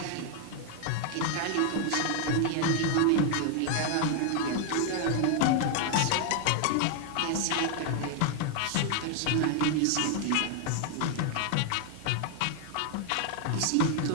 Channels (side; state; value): both; different; correlation 0.00